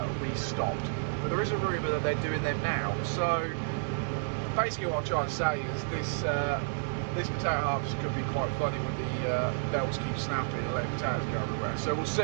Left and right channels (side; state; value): left; silent; digital silence